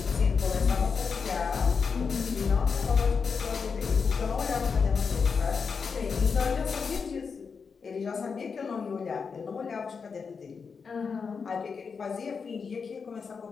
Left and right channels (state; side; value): quieter; right; 5.6 dB